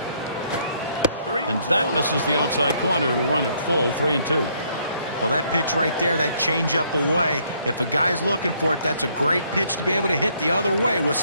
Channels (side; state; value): both; inverted; correlation -0.68